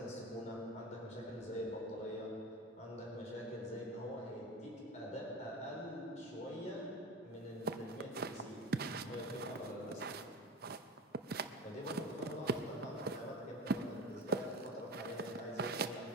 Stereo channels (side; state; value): both; normal; correlation 0.31